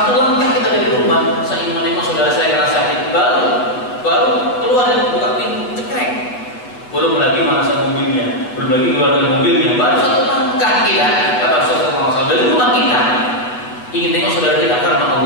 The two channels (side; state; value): right; late; 7.8 ms